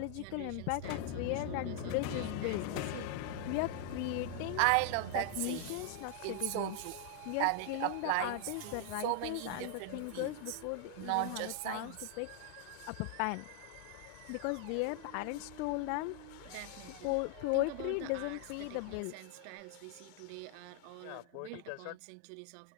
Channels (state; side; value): different; both; correlation 0.00